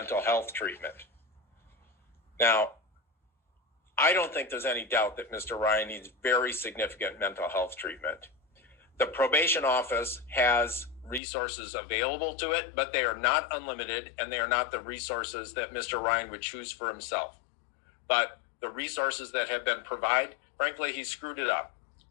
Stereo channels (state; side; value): drops out; right; at 11.2 s